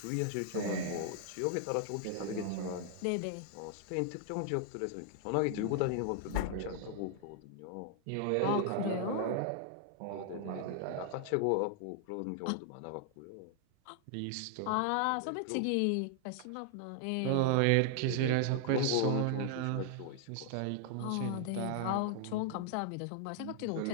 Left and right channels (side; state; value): both; different; correlation 0.00